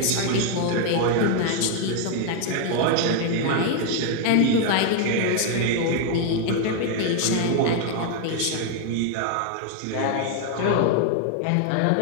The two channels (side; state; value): both; different; correlation 0.00